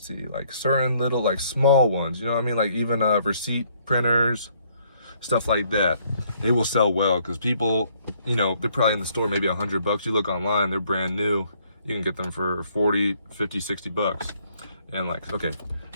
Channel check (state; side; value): inverted; both; correlation -0.67